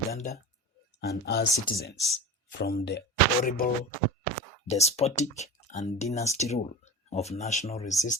and our citizens from the horrible, despotic, and dynasty rule of national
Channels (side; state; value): both; normal; correlation 0.32